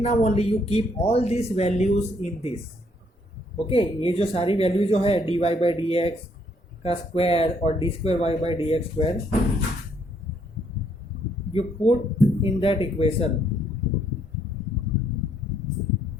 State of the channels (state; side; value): normal; both; correlation 0.69